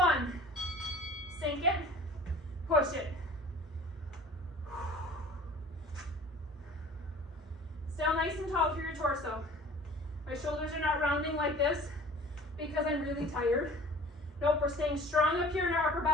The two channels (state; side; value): normal; both; correlation 0.46